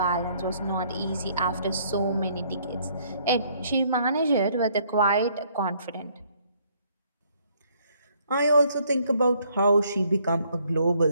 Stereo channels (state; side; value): inverted; both; correlation -0.66